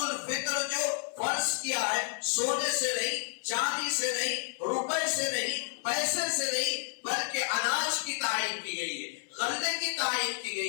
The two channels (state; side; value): silent; right; 57 dB below the other